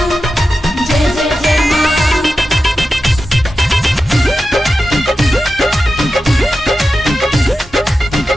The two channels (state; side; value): normal; both; correlation 0.91